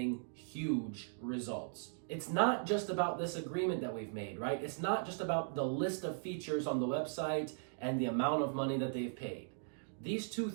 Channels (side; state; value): left; silent; digital silence